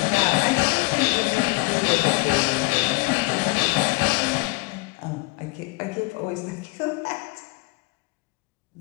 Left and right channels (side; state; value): right; quieter; 25.2 dB